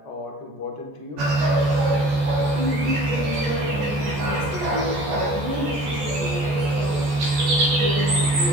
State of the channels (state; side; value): late; left; 14 ms